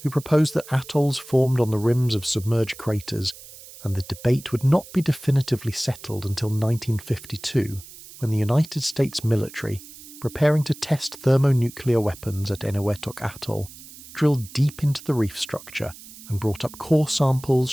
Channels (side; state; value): right; noise; hiss, 18 dB below the sound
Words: who proposed that atolls formed on the rims of submerged craters, and the debate would not be definitively settled until 1952, when the United States military, preparing to test thermonuclear weapons at Eniwetok Atoll, drilled deep into the reef structure and brought up core samples